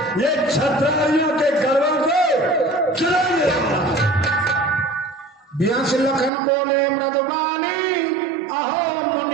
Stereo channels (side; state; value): left; drops out; at 6.3 s